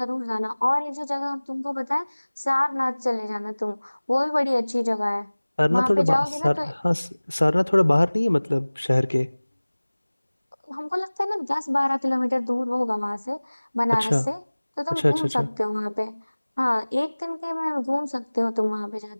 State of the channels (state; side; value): inverted; both; correlation -1.00